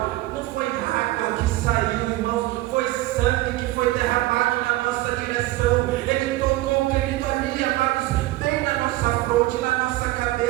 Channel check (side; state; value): left; quieter; 17.8 dB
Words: não foi água que saiu, irmãos, foi sangue que foi derramado na nossa direção. Ele tocou, querido, ali, amados, bem na nossa fronte, na nossa